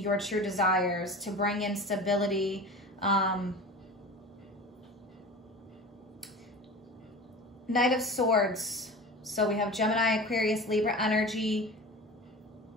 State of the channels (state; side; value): normal; both; correlation 0.35